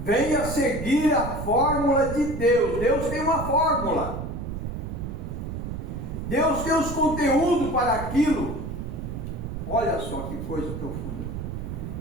Venha seguir a fórmula de Deus. Deus tem uma fórmula. Deus tem os conteúdos para aquilo. Olha só que coisa profunda.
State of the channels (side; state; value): right; noise; rumble, 6 dB below the sound